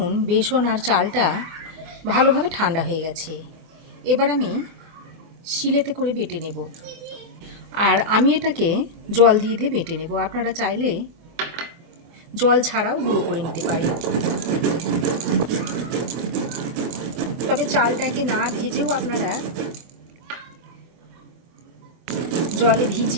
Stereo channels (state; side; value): late; left; 24 ms